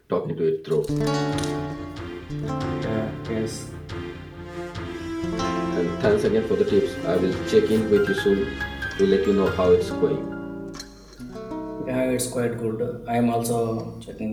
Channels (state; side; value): identical; both; correlation 1.00